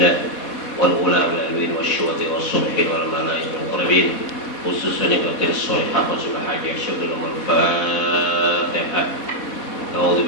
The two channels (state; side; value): late; right; 4.0 ms